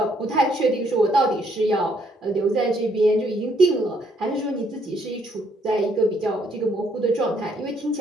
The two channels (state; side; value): normal; both; correlation 0.69